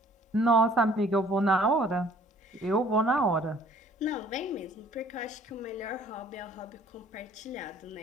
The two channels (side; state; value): both; normal; correlation 0.56